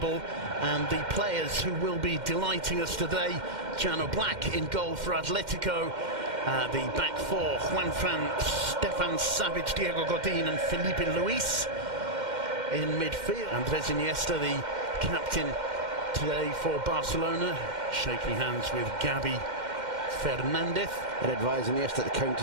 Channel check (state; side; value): late; left; 2.1 ms